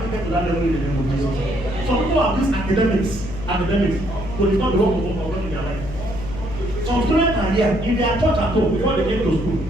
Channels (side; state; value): left; noise; hum, 9 dB below the sound